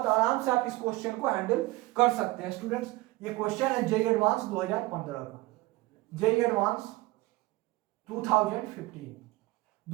आराम से आप इस क्वेश्चन को हैंडल कर सकते हैं स्टूडेंट्स। ये क्वेश्चन है जेईई एडवांस 2015 का, जेईई एडवांस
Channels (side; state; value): left; quieter; 20.2 dB